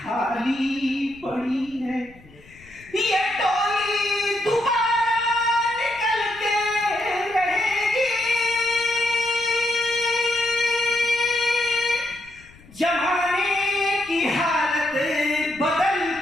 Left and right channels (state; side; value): noise; left; rumble, 24 dB below the sound